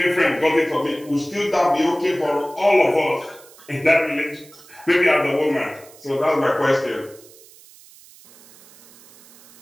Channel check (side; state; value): right; noise; hiss, 24 dB below the sound